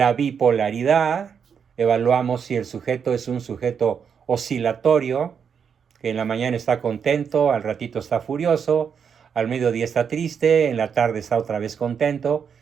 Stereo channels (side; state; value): left; quieter; 7.0 dB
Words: bipolaridad. Evaluamos si el sujeto es un sujeto oscilatorio, que en la mañana está contento, al ratito está furioso, al mediodía está triste, en la tarde está otra vez contento,